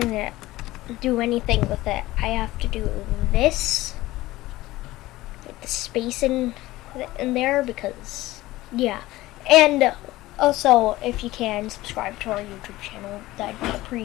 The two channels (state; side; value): quieter; right; 17.7 dB